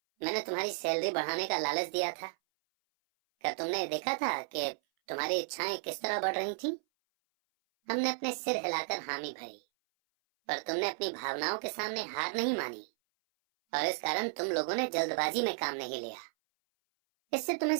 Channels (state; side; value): silent; left; 55 dB below the other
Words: मैंने तुम्हारी सैलरी बढ़ाने का लालच दिया था? क्या तुमने देखा था कि तुम्हारी इच्छाएं किस तरह बढ़ रही थीं? हमने अपने सिर हिलाकर हामी भरी, पर तुमने अपनी भावनाओं के सामने हार नहीं मानी, और इस कारण तुम लोगों ने जल्दबाजी में काम नहीं लिया। इससे तुम्हें